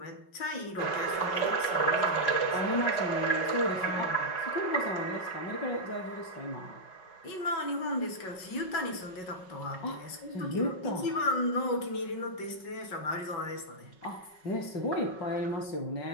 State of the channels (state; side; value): late; right; 5.4 ms